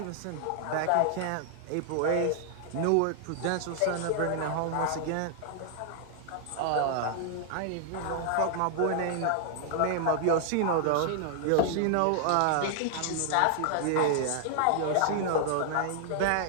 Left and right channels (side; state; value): both; different; correlation 0.00